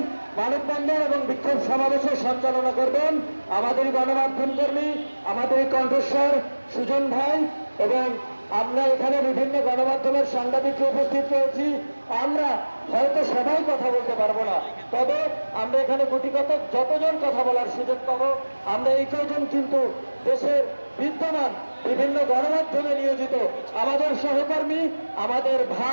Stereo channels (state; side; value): inverted; both; correlation -1.00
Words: মানববন্ধন এবং বিক্ষোভ সমাবেশের সঞ্চালনা করবেন আমাদের গণমাধ্যম কর্মী, আমাদের কণ্ঠস্বর সুজন ভাই, এবং আমরা এখানে বিভিন্ন গণমাধ্যমের সাংবাদিকরা উপস্থিত রয়েছি। আমরা হয়তো সবাই কথা বলতে পারবো না, তবে আমরা এখানে গুটিকত যতজন কথা বলার সুযোগ পাবো আমরা এই কয়জন কিন্তু দেশের বিদ্যমান বিভিন্ন গণমাধ্যমে নিয়োজিত আমাদের সহকর্মী, আমাদের